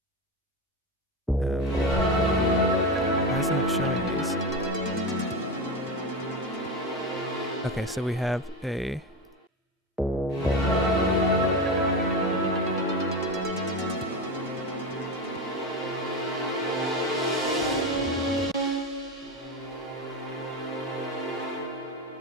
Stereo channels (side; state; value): both; normal; correlation 0.20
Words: Why isn't it showing these? Okay, so we have a...